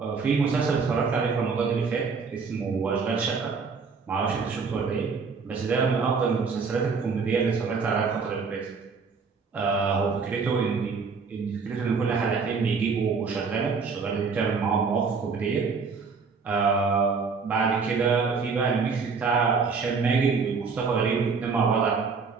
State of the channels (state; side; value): quieter; left; 5.1 dB